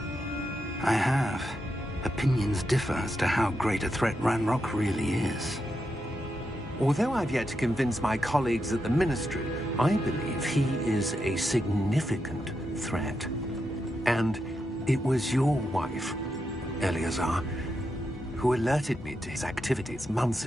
I have. Opinions differ as to how great a threat Ranrock really is. Although I've yet to convince my colleagues at the Ministry, I believe he is a significant threat. And it was your wife, Eleazar, who alerted me to his activities months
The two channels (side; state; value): both; normal; correlation 0.85